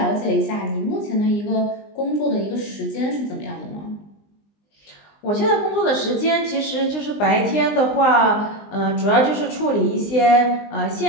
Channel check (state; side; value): late; right; 20 ms